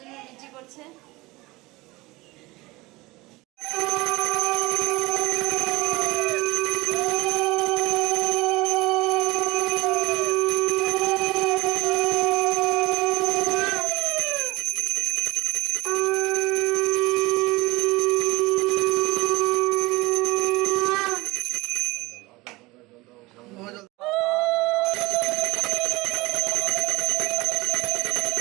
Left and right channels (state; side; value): quieter; left; 21.5 dB